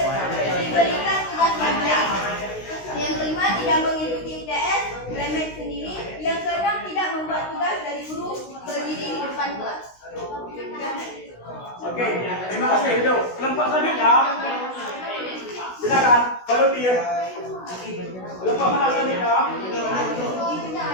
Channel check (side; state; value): right; late; 16 ms